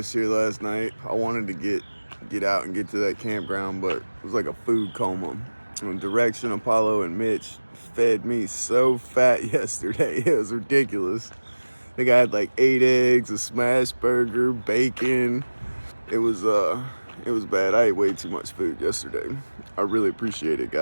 here last night. I wanted to get out and get to that campground, but it was like a food coma. And Direction, Apollo, and Mitch fed me so fat yesterday. It was ridiculous. I think I had like 8 eggs, a smash burger, bacon. It was bad. I ate way too much food yesterday. I really appreciate it,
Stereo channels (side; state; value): both; inverted; correlation -1.00